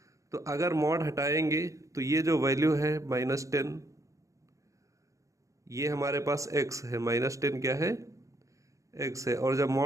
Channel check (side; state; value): left; late; 0.15 ms